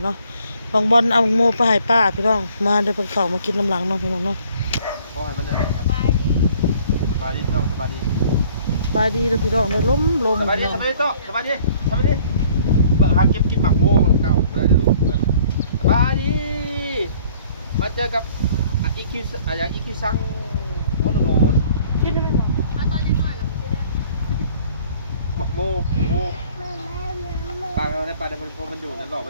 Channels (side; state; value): both; inverted; correlation -0.56